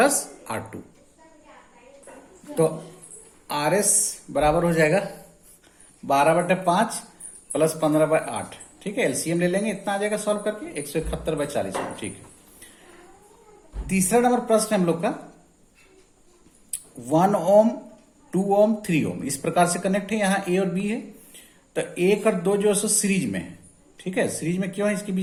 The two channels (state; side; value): identical; both; correlation 1.00